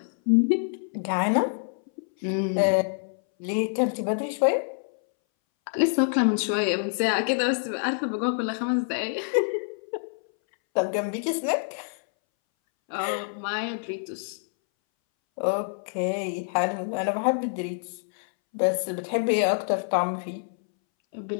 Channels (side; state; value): right; silent; 61 dB below the other